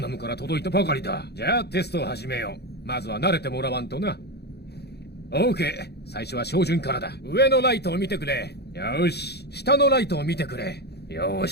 なのから届いたばかりだ。じゃあテストを始めよう。まずは慣れてもらわんとな。OK、最初は照準からだ。上のライトを見てくれ。よし、下のライトを見てくれ。よ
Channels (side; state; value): right; late; 0.48 ms